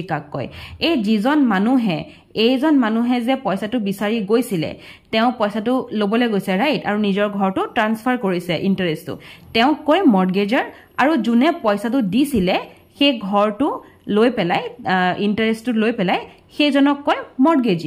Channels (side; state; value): both; identical; correlation 1.00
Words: কাক কয় এই যিজন মানুহে যে পইচাটো বিচাৰি গৈছিলে তেওঁ পইচাটো লবলে গৈছে ৰাইট আৰু নিজৰ ঘৰটো ট্ৰান্সফাৰ কৰিছে ইন্টাৰেষ্টটো তেওঁ কয় মৰ্টগেজাৰ আৰু যোনে পইচাটো দিছিলে সেই ঘৰটো লৈ পেলাই ইন্টাৰেষ্টটো লৈ পেলাই সেইজনক কয়